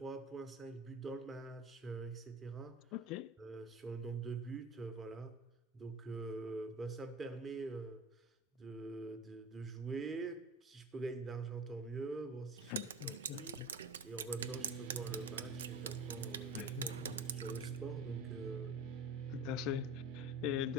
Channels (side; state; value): both; normal; correlation 0.34